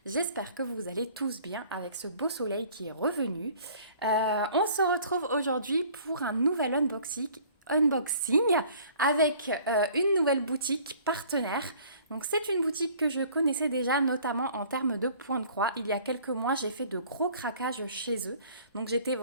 J'espère que vous allez tous bien avec ce beau soleil qui est revenu. On se retrouve aujourd'hui pour un nouvel unboxing avec une nouvelle boutique partenaire. Donc c'est une boutique que je connaissais déjà notamment en termes de points de croix. Il y a quelques mois j'ai fait de gros craquages chez eux. Donc j'étais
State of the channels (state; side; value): inverted; both; correlation -0.53